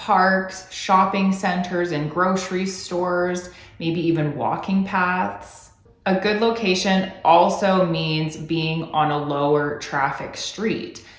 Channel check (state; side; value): identical; both; correlation 1.00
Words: shopping centers, and grocery stores, maybe even walking paths. A good location also means being on a lower traffic street.